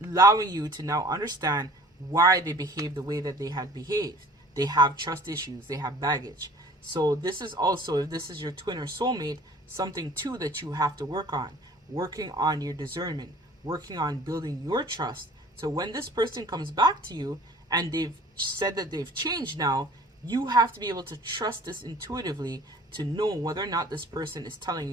allowing you to now understand why they behaved the way that they had behaved. They have trust issues. They have baggage. So this is also, if this is your twin or soulmate, something too that you have to work on. Working on your discernment. Working on building your trust. So when this person comes back to you and they've said that they've changed now, you have to be able to trust this intuitively to know whether or not this person is telling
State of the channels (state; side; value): normal; both; correlation 0.49